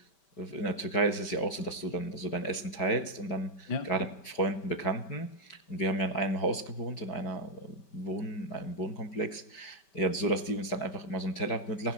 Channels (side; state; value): right; late; 5.1 ms